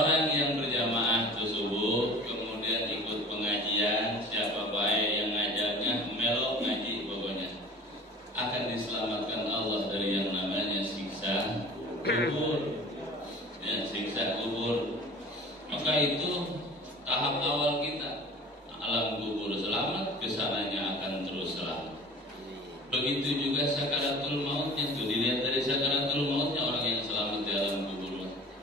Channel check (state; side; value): normal; both; correlation 0.42